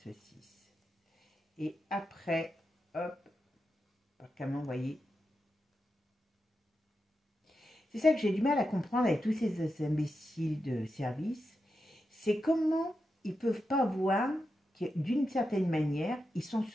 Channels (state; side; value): normal; both; correlation 0.88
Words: Et après, hop, comment vous voyez. C'est ça que j'ai du mal à comprendre avec tous ces imbéciles de service. C'est comment ils ne peuvent pas voir que d'une certaine manière, ils sont